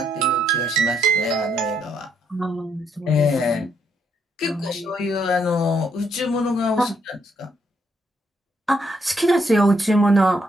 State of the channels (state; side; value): normal; both; correlation 0.74